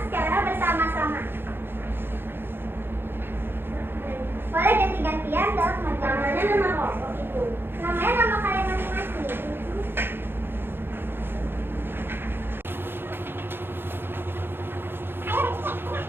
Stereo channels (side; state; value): left; late; 0.10 ms